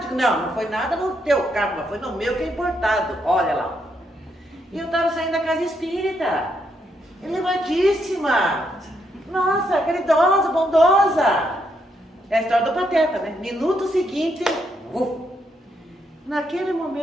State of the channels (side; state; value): both; normal; correlation 0.77